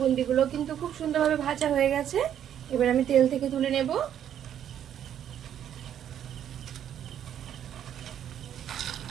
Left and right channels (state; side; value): quieter; left; 9.9 dB